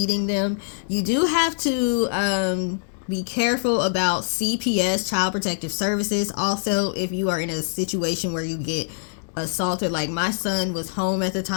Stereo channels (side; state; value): right; silent; digital silence